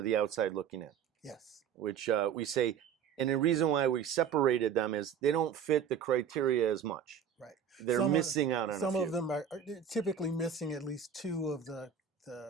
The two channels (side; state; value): left; quieter; 7.7 dB